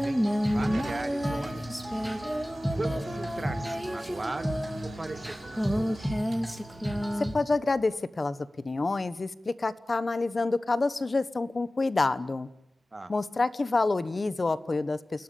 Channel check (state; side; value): normal; both; correlation 0.97